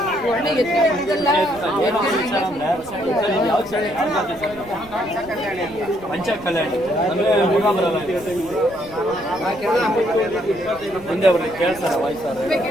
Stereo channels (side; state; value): right; noise; rumble, 20 dB below the sound